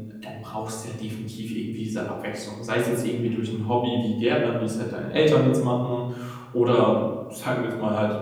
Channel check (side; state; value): both; identical; correlation 1.00